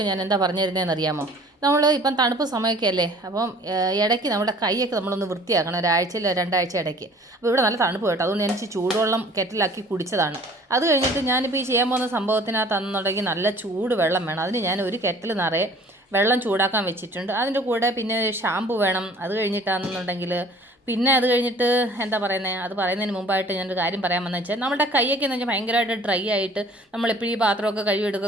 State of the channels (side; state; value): both; normal; correlation 0.51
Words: ഞാൻ എന്താ പറഞ്ഞു തരുന്നതെന്ന് അറിയാമോ? നമ്മൾ ഇപ്പം തണുപ്പ് സമയമൊക്കെ അല്ലേ, അപ്പം ഇടയ്ക്ക് നമ്മുടെ കൈയൊക്കെ നമ്മളൊന്ന് വൃത്തിയാക്കണം, ഒരാഴ്ചയിൽ രണ്ടാഴ്ച ഇടയ്ക്ക്. അപ്പോൾ ഇവിടെ നല്ല തണുപ്പ് കേട്ടോ, അതുകൊണ്ട് ഞാൻ ചൂടുവെള്ളം കെറ്റിലാക്കി കുടിച്ചതാണ്. അത് കഴിഞ്ഞിട്ട് ഞാനിപ്പോൾ ഈ ചെയ്യാൻ പോകുന്ന സംഭവത്തിനകത്താണെന്നുണ്ടെങ്കിൽ നല്ല ചൂട് വെള്ളം വേണം. അതിന് ഞാൻ ഒരു കെറ്റിൽ നിറയെ വെള്ളം ചൂടാക്കാൻ വെച്ചിട്ടുണ്ട്. അതിൻ്റെ കൂടെ പിന്നെ ഷാമ്പു വേണം. അത് കഴിഞ്ഞിട്ടാണെന്നുണ്ടെങ്കിൽ പിന്നെ അത് കഴിഞ്ഞിട്ട് എന്താ പറയുന്നത്, അത് പറയുന്നതിന് മുമ്പായിട്ട് ഞാനൊരു കാര്യം പറയാൻ വന്നത് വെച്ചാൽ, നമ്മുടെ കൈയൊക്കെ എന്ന് വെച്ചാൽ ഭയങ്കരമായിട്ട് ഡ്രൈ ആയിട്ട് നമ്മളെപ്പോഴും ഈ പാത്രമൊക്കെ